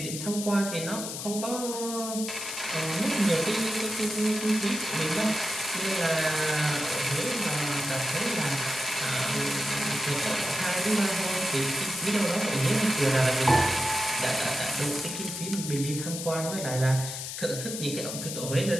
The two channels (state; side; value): noise; left; hiss, 6 dB below the sound